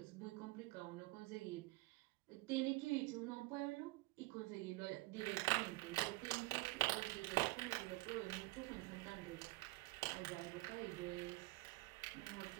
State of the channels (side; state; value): left; quieter; 21.7 dB